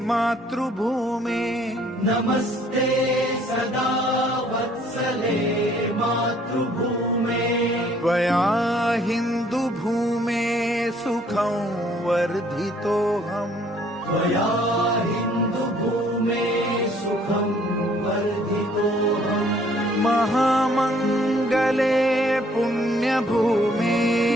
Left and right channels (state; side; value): normal; both; correlation 0.61